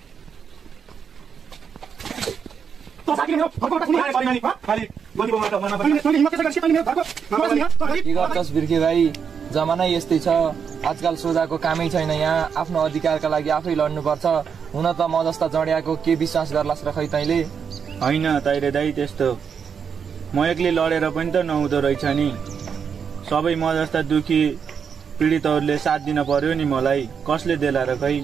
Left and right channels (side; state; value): left; quieter; 6.8 dB